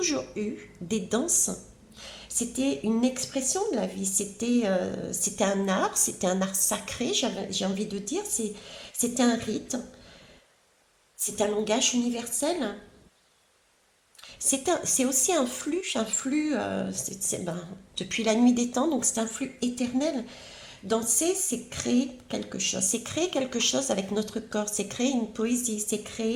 eu des danses. C'était une expression de la vie, c'était un art sacré, j'ai envie de dire, c'était un rite, c'est un langage universel. C'est aussi un flux depuis la nuit des temps, donc c'est un flux éternel. Danser, c'est créer quelque chose avec notre corps, c'est créer une poésie, c'est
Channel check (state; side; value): identical; both; correlation 1.00